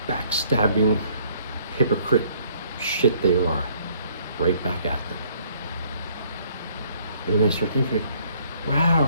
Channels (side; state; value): both; inverted; correlation -0.61